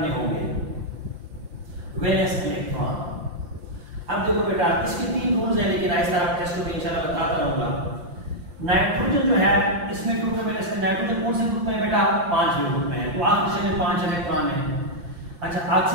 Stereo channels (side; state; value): left; late; 5.7 ms